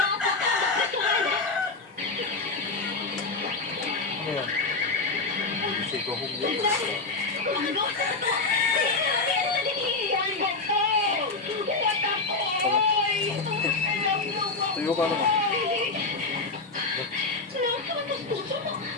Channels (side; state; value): right; quieter; 3.7 dB